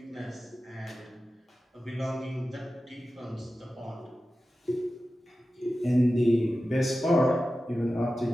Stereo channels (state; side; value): normal; both; correlation 0.94